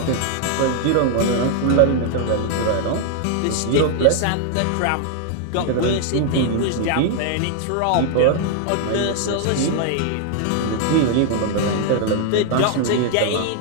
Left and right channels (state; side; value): different; both; correlation 0.00